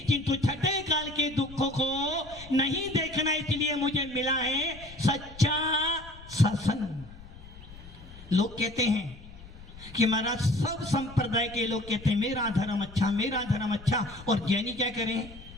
किंतु छठे काल के दुखों को नहीं देखना, इसलिए मुझे मिला है सच्चा शासन। लोग कहते हैं कि महाराज सब संप्रदाय के लोग कहते हैं मेरा धर्म अच्छा, मेरा धर्म अच्छा, और जैनी क्या करें?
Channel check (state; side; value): noise; left; rumble, 18 dB below the sound